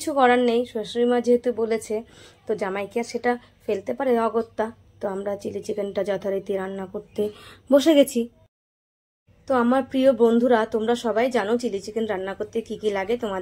করার নেই, শাশুড়ি মা যেহেতু বলেছে তো জামাইকে আর সেটা ফেলতে পারে অগত্যা। তো আমরা চিলি চিকেনটা যথারীতি রান্না করতে বসে গেছি। তো আমার প্রিয় বন্ধুরা, তোমরা সবাই জানো চিলি চিকেন রান্না করতে কি কি লাগে,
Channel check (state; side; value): identical; both; correlation 1.00